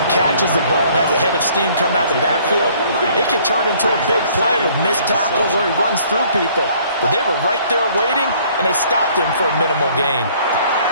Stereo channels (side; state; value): both; inverted; correlation -0.59